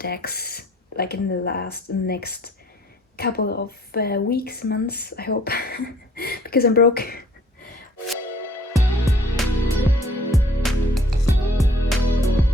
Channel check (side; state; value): both; normal; correlation 0.56